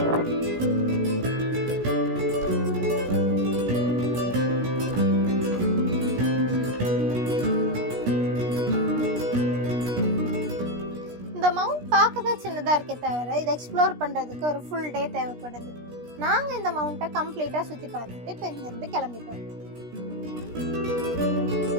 இந்த மவுண்ட் பார்க்க தான் சின்னதாக இருக்கே தவிர இதை எக்ஸ்ப்ளோர் பண்ணுறதுக்கு ஒரு ஃபுல் டே தேவைப்படுது. நாங்கள் இந்த மவுண்ட்டை கம்ப்ளீட்டாக சுற்றி பார்த்துட்டு இப்போ இங்கேருந்து கிளம்பிட்டோம்.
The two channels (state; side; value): late; left; 17 ms